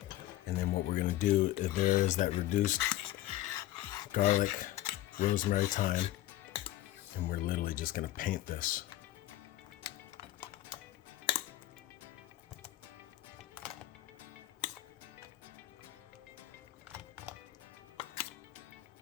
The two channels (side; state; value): right; quieter; 14.9 dB